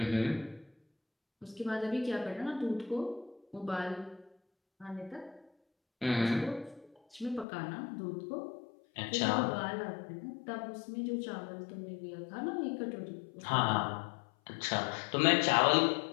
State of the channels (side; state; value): right; drops out; at 7.5 s